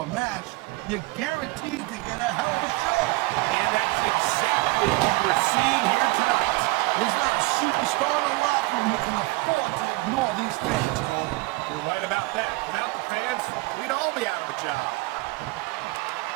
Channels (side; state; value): left; quieter; 23.7 dB